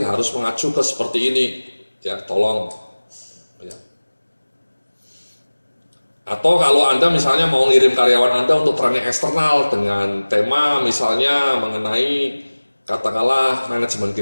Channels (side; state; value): both; inverted; correlation -1.00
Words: harus mengacu ke seperti ini. Ya, tolong. Ya. Atau kalau Anda misalnya mau ngirim karyawan Anda untuk training eksternal dengan tema misalnya mengenai katakanlah manajemen